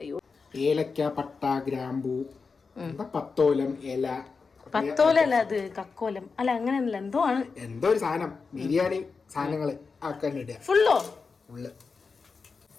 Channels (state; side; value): quieter; right; 4.8 dB